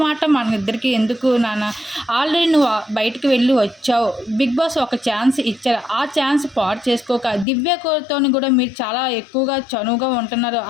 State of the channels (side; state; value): right; drops out; at 7.5 s